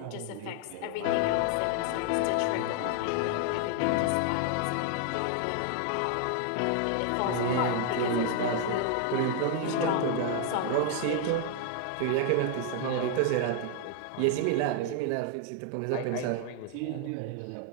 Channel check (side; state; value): both; different; correlation 0.00